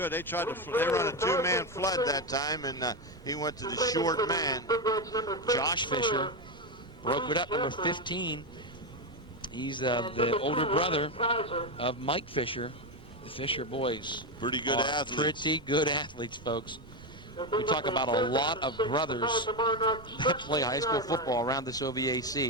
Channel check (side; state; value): right; noise; rumble, 22 dB below the sound